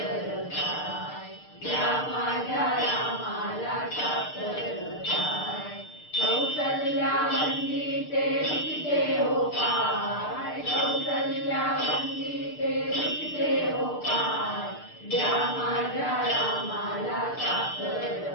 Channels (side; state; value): right; late; 6.6 ms